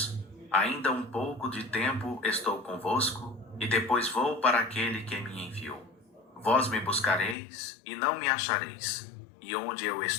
Ainda um pouco de tempo estou convosco, e depois vou para aquele que me enviou. Vós me buscareis, e não me achareis, e onde eu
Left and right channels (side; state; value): right; drops out; at 7.4 s